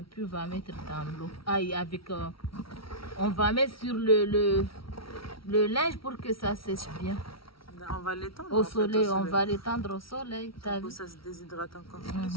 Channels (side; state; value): right; late; 0.75 ms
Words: puis on va mettre dans l'eau. On va mettre sur le linge pour que ça sèche bien. On va l'étendre au soleil. On va l'étendre au soleil. Ça se déshydrate encore